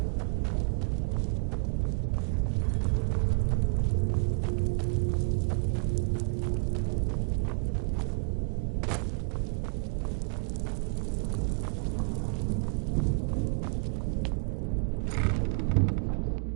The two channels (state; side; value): quieter; left; 35.7 dB